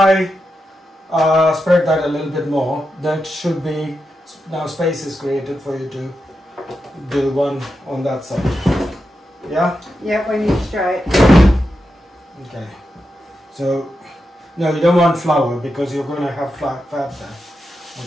spread that a little bit more, that should be, now space is created for you to do one on that side. Yeah? Yeah, when you stretch. Okay. So, no, you don't want flour because you're going to have fat there.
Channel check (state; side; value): normal; both; correlation 0.88